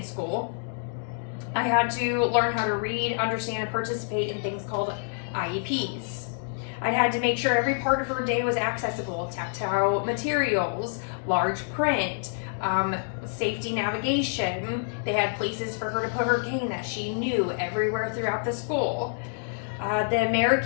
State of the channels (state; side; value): silent; right; digital silence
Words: school, I had to learn how to read, understand, and participate in things called IEPs. I had to make sure every part of her day was accessible, tactile materials, large print, safety navigation. They had places for her to put her cane that she knew everywhere throughout the school. The